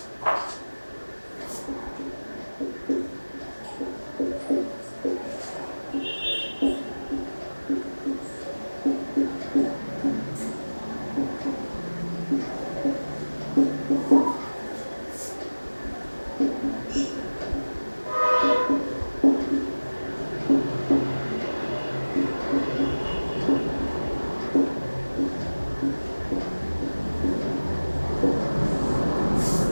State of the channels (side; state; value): both; inverted; correlation -1.00